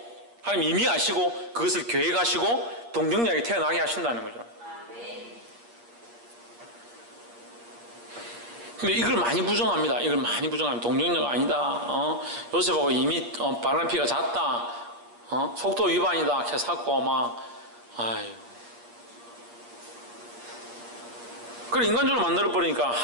하나님 이미 아시고 그것을 계획하시고 동정녀에게 태어나게 하신다는 거죠. 근데 이걸 많이 부정합니다. 동정녀가 아니다. 요셉하고 이미 바람 피가 잦다. 속도 위반이다. 캐사고 막 아유. 그걸 인간적으로 만들어버리니까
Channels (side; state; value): left; late; 8.5 ms